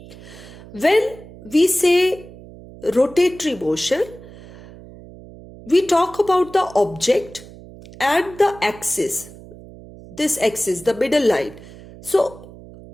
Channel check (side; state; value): right; noise; hum, 18 dB below the sound